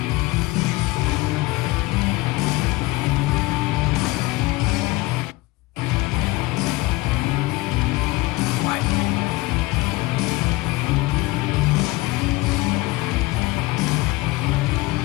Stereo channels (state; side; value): quieter; right; 21.0 dB